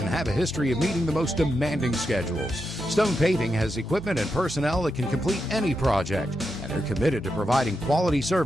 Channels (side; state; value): both; normal; correlation 0.86